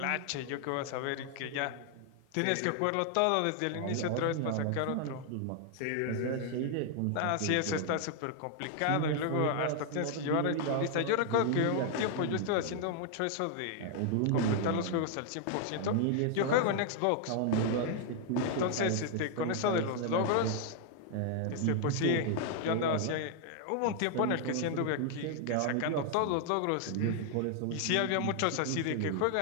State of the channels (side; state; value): both; different; correlation 0.00